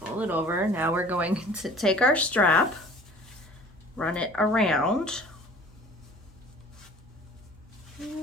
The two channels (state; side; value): normal; both; correlation 0.47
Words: Fold it over. Now we're going to take our strap, run it around.